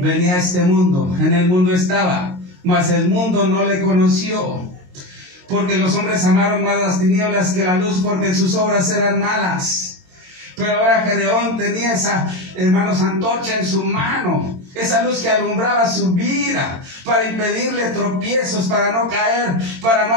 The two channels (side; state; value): left; late; 22 ms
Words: a este mundo, en el mundo estaba, mas el mundo no le conoció, porque los hombres amaron más las tinieblas que la luz, porque sus obras eran malas. Pero ahora Gedeón tenía esa, hermanos, antorcha en su mano, esa luz que alumbraba su vida, para impedirle tropiezos, para no caer, para no